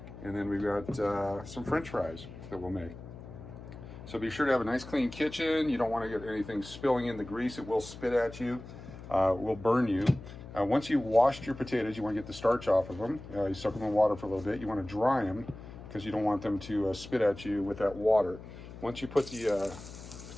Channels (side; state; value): left; noise; hum, 14 dB below the sound